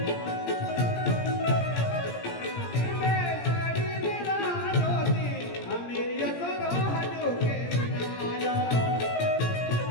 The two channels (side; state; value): right; late; 17 ms